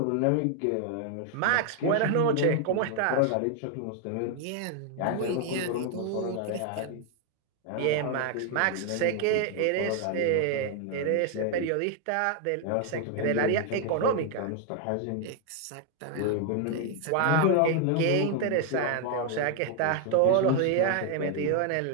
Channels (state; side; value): different; both; correlation 0.00